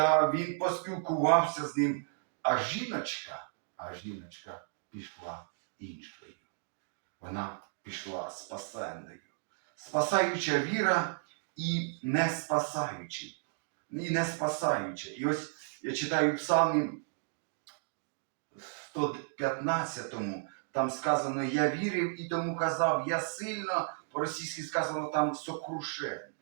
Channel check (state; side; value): silent; left; digital silence